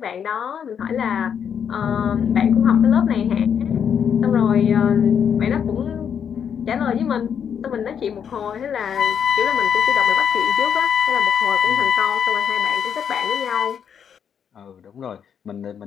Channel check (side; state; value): right; quieter; 7.8 dB